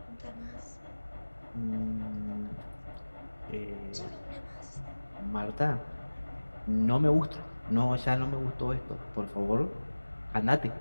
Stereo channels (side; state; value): both; inverted; correlation -1.00